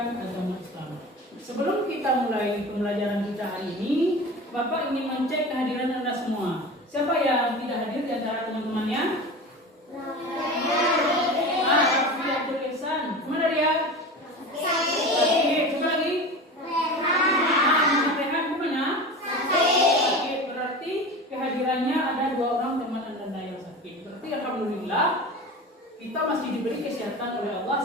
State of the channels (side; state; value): both; normal; correlation 0.32